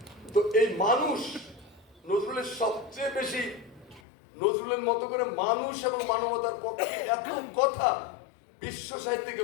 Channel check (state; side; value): drops out; right; at 4.0 s